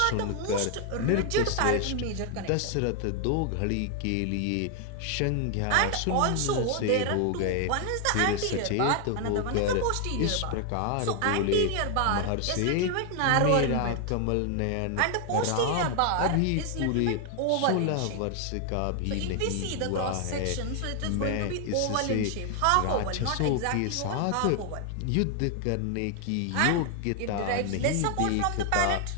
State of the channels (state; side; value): different; both; correlation 0.00